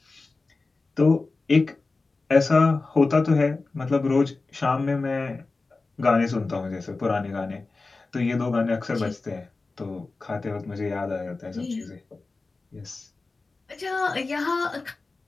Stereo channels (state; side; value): quieter; right; 3.7 dB